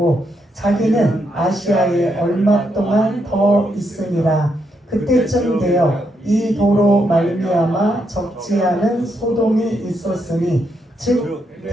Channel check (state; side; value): normal; both; correlation 0.79